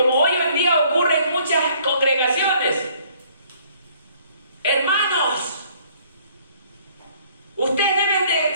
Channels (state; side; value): inverted; both; correlation -0.60